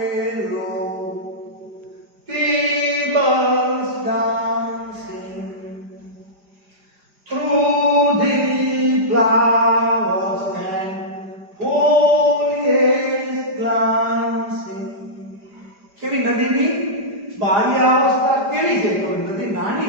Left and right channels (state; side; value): late; left; 5.0 ms